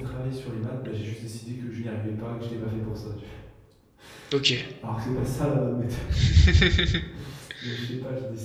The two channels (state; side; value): identical; both; correlation 1.00